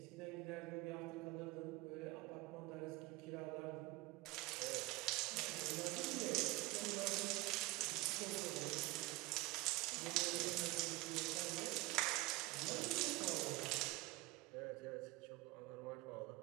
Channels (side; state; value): left; quieter; 21.2 dB